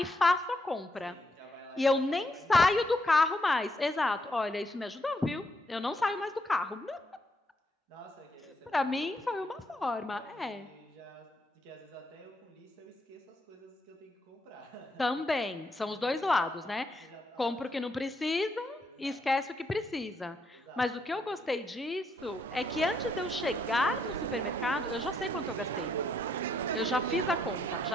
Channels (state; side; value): normal; both; correlation 0.75